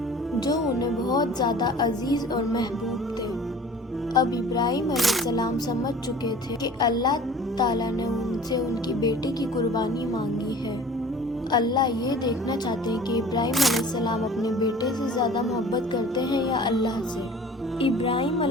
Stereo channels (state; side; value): normal; both; correlation 0.45